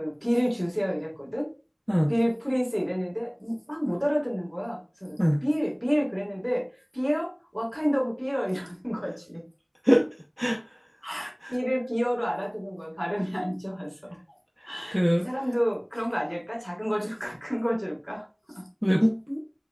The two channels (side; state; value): both; identical; correlation 1.00